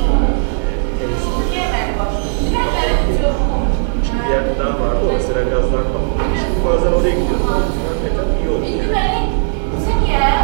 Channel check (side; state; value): left; silent; digital silence